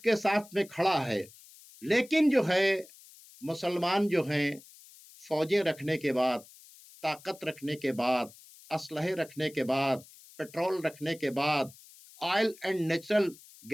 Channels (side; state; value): left; noise; hiss, 22 dB below the sound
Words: साथ में खड़ा है, लेकिन जो है मुसलमान जो हैं फौजें रखने के बाद, ताकत रखने के बाद, असलहे रखने के बाद, पेट्रोल रखने के बाद, ऑयल एंड नेचुरल